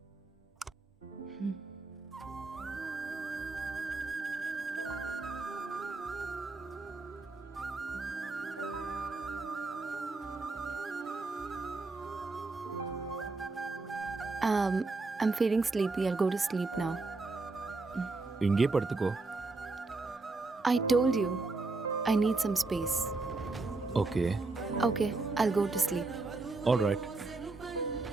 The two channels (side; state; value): left; quieter; 3.5 dB